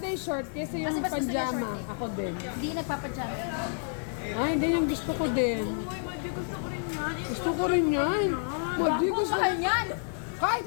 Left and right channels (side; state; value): right; silent; 58 dB below the other